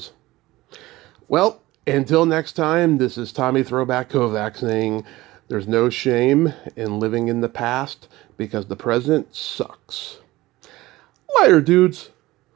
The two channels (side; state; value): left; quieter; 18.4 dB